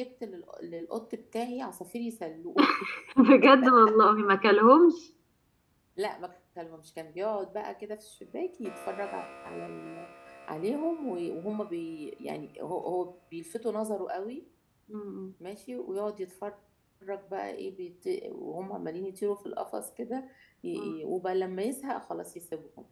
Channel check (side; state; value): both; identical; correlation 1.00